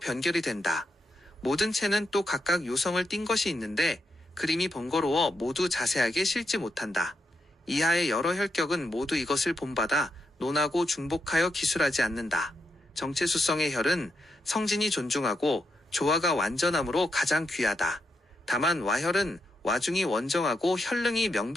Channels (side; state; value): both; normal; correlation 0.82